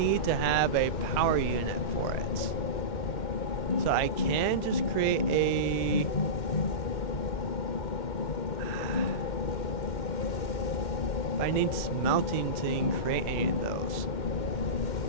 to have a power unit for it. So I can just create a... I need smelting to even create any of those.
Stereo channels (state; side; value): late; right; 2.1 ms